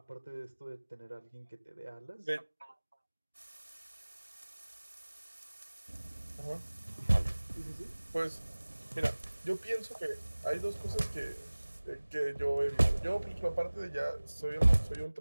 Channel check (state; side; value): inverted; both; correlation -1.00